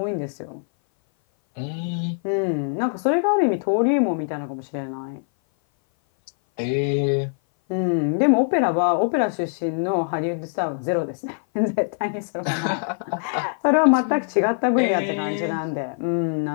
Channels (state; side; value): silent; right; 58 dB below the other